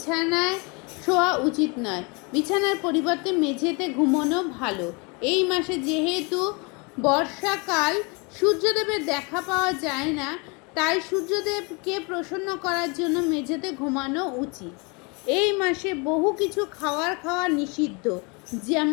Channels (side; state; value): right; quieter; 30.4 dB